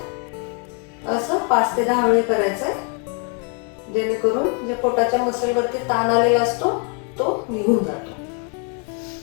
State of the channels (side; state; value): right; quieter; 38.6 dB